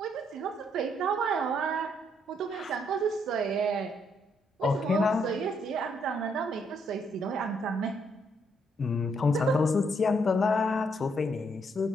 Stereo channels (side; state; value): both; normal; correlation 0.73